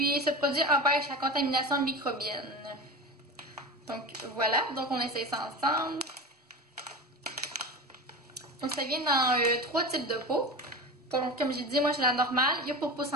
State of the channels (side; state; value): both; normal; correlation 0.28